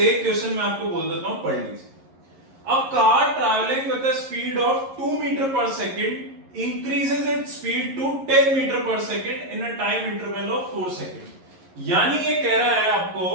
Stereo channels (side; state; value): left; late; 11 ms